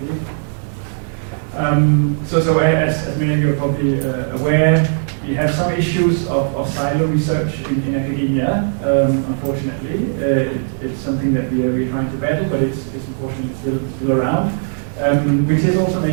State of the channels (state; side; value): silent; left; 64 dB below the other